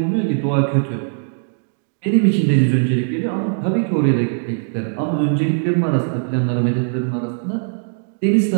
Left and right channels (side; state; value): left; silent; digital silence